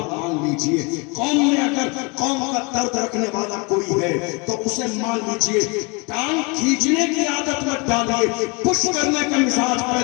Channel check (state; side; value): quieter; right; 29.9 dB